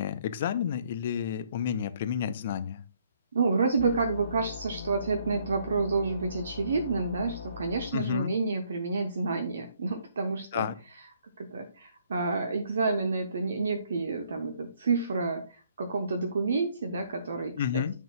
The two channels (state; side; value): inverted; both; correlation -0.67